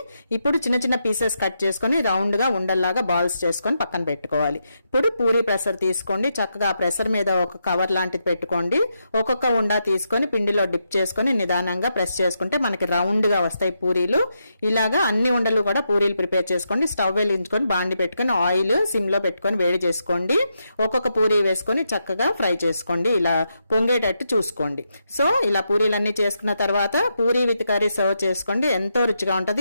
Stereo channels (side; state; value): both; inverted; correlation -0.83